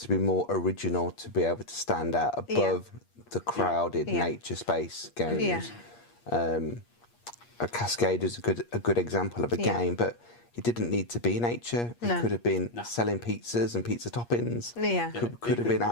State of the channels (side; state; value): right; late; 8.5 ms